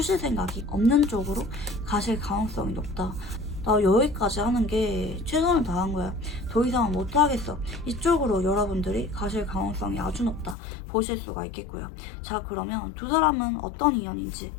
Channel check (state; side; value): drops out; right; at 10.6 s